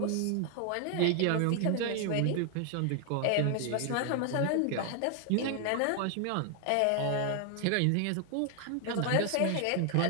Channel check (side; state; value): both; different; correlation 0.00